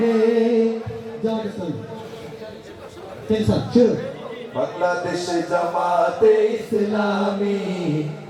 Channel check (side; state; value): both; identical; correlation 1.00